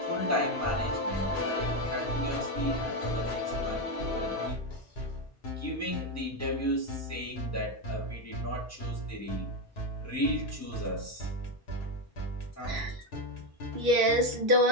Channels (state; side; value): normal; both; correlation 0.08